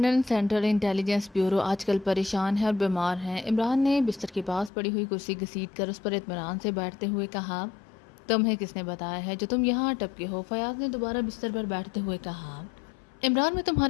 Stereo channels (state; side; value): drops out; right; at 4.7 s